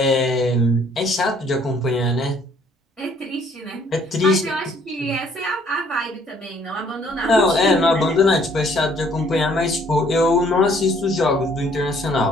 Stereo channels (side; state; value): both; normal; correlation 0.62